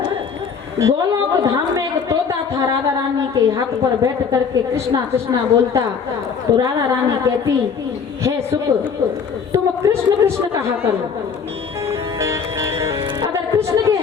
गोलोक धाम में एक तोता था, राधा रानी के हाथ पर बैठ करके कृष्णा कृष्णा बोलता। तो राधा रानी कहती, हे सुख, तुम कृष्ण कृष्ण कहा करो। अगर कृष्ण के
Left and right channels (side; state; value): right; quieter; 6.2 dB